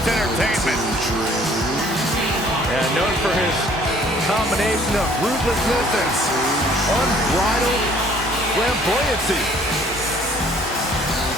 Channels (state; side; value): normal; both; correlation 0.57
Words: entertainment. And known for his combination of ruthlessness and unbridled flamboyancy.